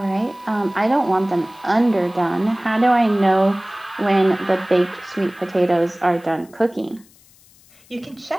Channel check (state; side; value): noise; left; hiss, 28 dB below the sound